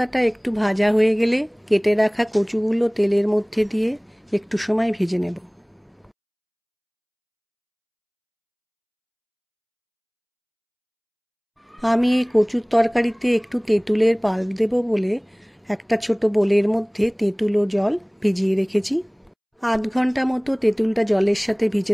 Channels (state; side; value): identical; both; correlation 1.00